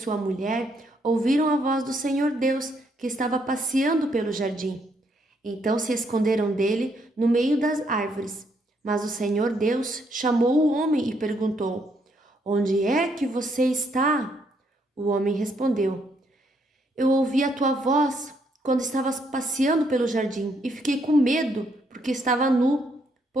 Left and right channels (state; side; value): normal; both; correlation 0.73